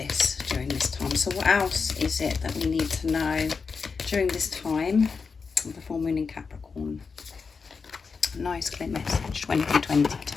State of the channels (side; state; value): right; quieter; 5.1 dB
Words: during this time. So what else is it that we need to know during this time of the full moon in Capricorn? Nice clear message,